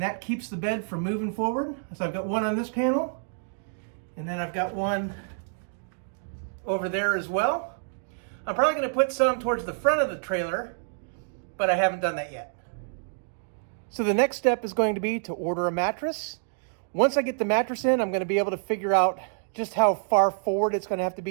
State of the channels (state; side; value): silent; left; digital silence